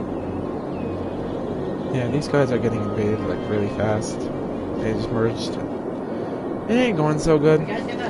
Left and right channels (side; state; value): both; identical; correlation 1.00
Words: Yeah, these guys are getting invaded like really fast. They just merged. It ain't going so good. You guys get